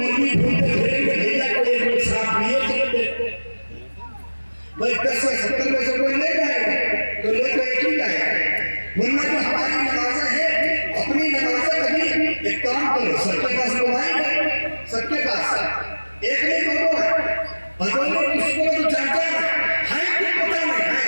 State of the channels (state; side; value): inverted; both; correlation -1.00